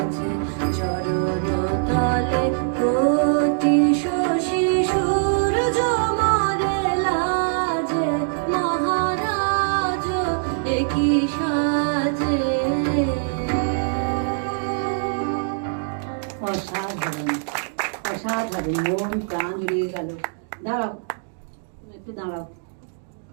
চরণ তলে কোটি শশী সূর্য মরে লাজে মহারাজ একই সাজে অসাধারণ অসাধারণ মন প্রাণ জুড়িয়ে গেল। দাঁড়াও একটু দাঁড়াও।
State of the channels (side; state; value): left; silent; digital silence